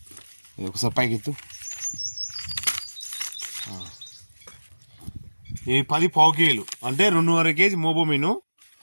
ఒకసారి పైకి ఎత్తు. ఇవి 10 పావు కేజీలు అంటే 2.5 కేజీ మోబోమిను.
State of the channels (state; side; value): inverted; both; correlation -1.00